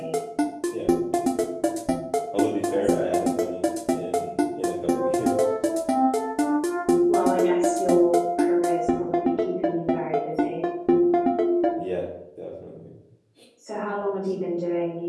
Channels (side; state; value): both; identical; correlation 1.00